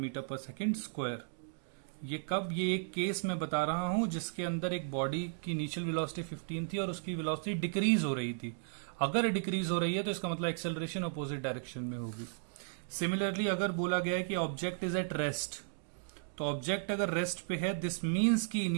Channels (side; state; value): left; silent; digital silence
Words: पर सेकेंड स्क्वायर। ये कब, ये एक केस मैं बता रहा हूं जिसके अंदर एक बॉडी की इनिशियल वेलोसिटी 15 थी और उसकी वेलोसिटी डिक्रीज हो रही थी। अगर डिक्रीज हो रही है तो इसका मतलब एक्सेलरेशन अपोजिट डायरेक्शन में होगी। सिमिलरली अगर बोला गया है कि ऑब्जेक्ट इज एट रेस्ट, तो ऑब्जेक्ट अगर रेस्ट पे है दिस मीन्स की